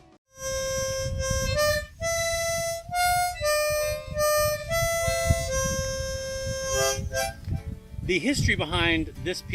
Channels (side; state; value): both; identical; correlation 1.00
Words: The history behind this